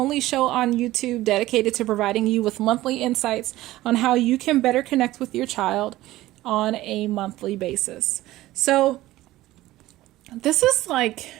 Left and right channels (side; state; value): left; quieter; 16.5 dB